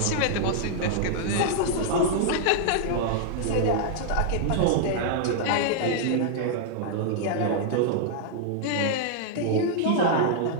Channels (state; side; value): different; both; correlation -0.01